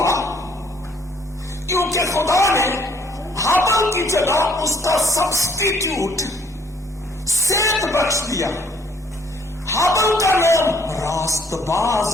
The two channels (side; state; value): both; normal; correlation 0.63